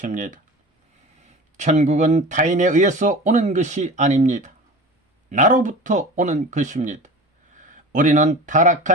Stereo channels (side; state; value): both; normal; correlation 0.36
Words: 천국은 타인에 의해서 오는 것이 아닙니다. 나로부터 오는 것입니다. 우리는